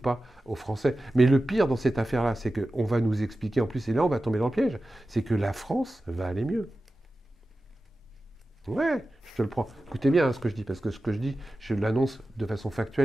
aux Français. Mais le pire dans cette affaire-là, c'est qu'on va nous expliquer, en plus, et là on va tomber dans le piège, c'est que la France va aller mieux. Ouais, je te le prends. Écoutez bien ce que je dis, parce que ce que je dis, je l'annonce de façon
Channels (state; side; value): normal; both; correlation 0.94